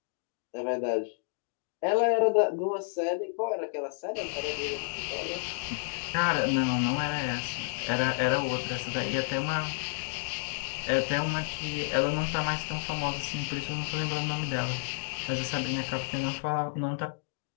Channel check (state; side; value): silent; right; digital silence